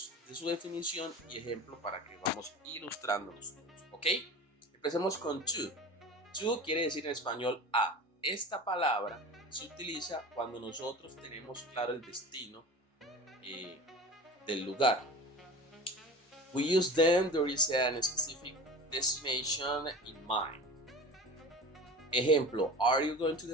definición y ejemplo para que vamos ilustrándolos todos. ¿Ok? Empecemos con to. To quiere decir en español a. Esta palabra se utiliza cuando nosotros tenemos claro el destino del lugar. We use them there is a specific destination in mind. Ejemplo, are you going to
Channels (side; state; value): both; normal; correlation 0.35